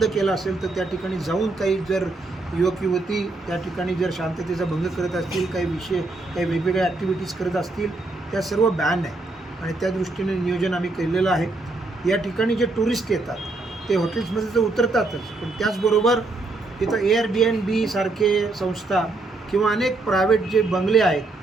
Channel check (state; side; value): quieter; left; 3.2 dB